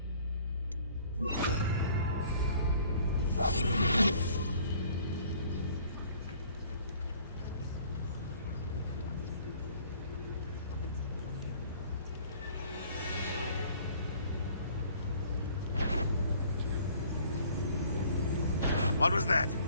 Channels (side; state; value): both; inverted; correlation -0.56